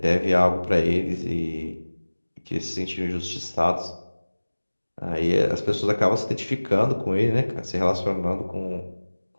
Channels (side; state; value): both; inverted; correlation -1.00